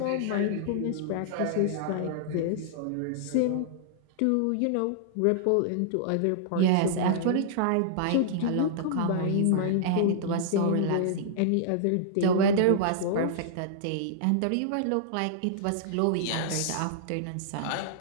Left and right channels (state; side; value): different; both; correlation -0.01